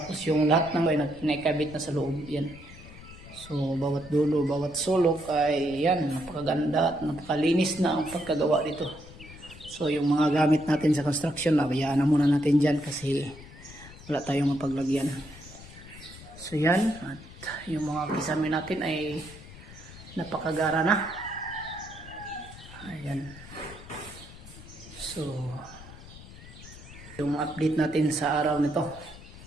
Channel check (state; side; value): noise; left; rumble, 17 dB below the sound